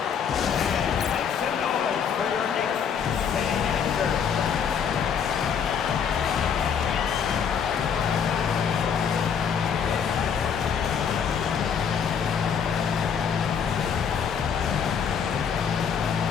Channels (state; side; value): quieter; right; 7.2 dB